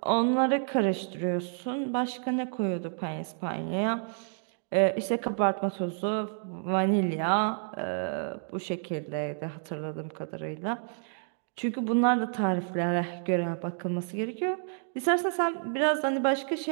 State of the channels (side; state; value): left; silent; digital silence